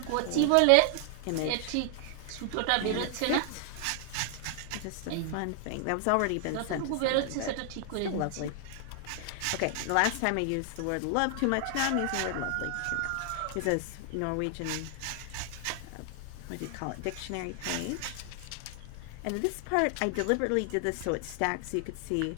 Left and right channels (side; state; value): both; different; correlation 0.00